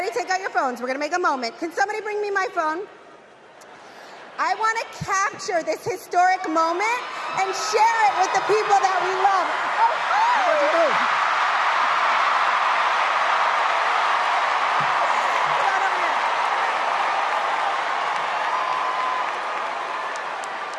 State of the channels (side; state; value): both; identical; correlation 1.00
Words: take out your phones. We're going to make a moment. Can somebody bring me my phone? I want to capture this historic moment and share it with the people that we love. What'd you do?